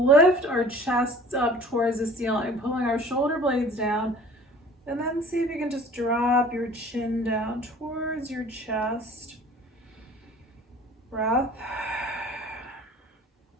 our chests up towards the ceiling, pulling our shoulder blades down, and then see if you can just drop your chin down towards your chest. Breath.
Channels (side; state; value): both; normal; correlation 0.48